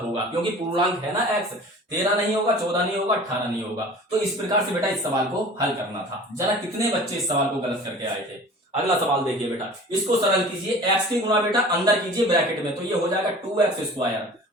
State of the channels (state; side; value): normal; both; correlation 0.42